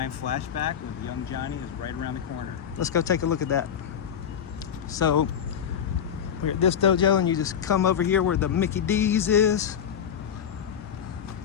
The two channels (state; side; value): quieter; right; 8.4 dB